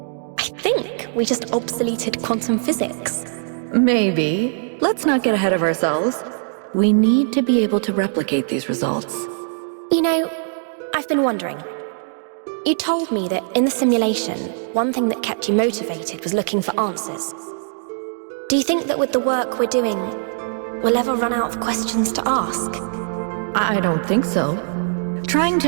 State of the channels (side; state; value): left; silent; digital silence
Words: I think we just obsoleted quantum physics. Maybe. Let's not get ahead of ourselves. We need to be able to replicate these results. You know, I've been wondering. You told me that in the simulation, one thing that kept you motivated was looking for answers. Do you think that with the work we're doing, we'll ever run out of questions to ask? I don't think so. Trying